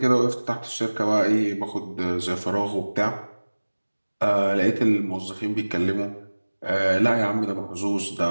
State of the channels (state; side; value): inverted; both; correlation -1.00